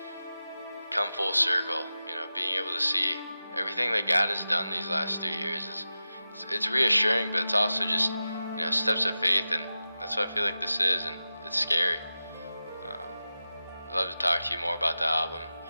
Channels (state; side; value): inverted; both; correlation -0.93